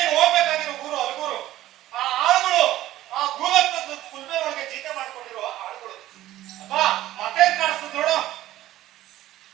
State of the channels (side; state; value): left; quieter; 14.6 dB